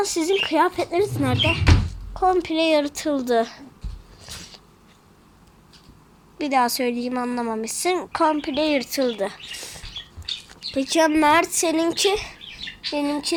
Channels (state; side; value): identical; both; correlation 1.00